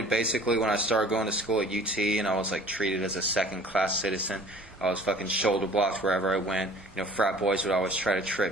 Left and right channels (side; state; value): both; normal; correlation 0.49